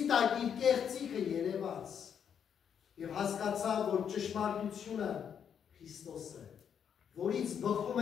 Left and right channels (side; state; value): right; quieter; 8.0 dB